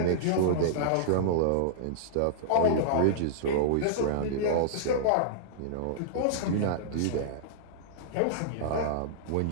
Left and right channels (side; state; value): both; different; correlation -0.02